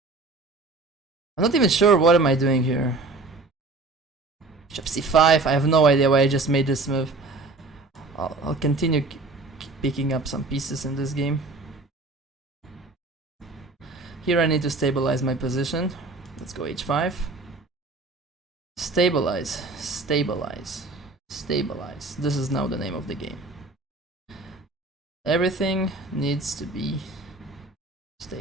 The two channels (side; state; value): left; quieter; 3.4 dB